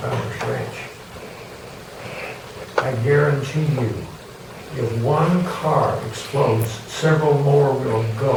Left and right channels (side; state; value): both; identical; correlation 1.00